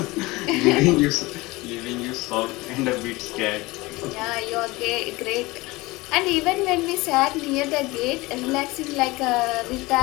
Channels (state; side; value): quieter; right; 21.7 dB